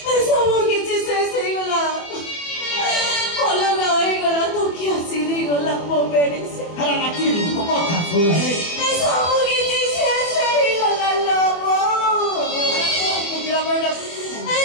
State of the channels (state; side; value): late; right; 24 ms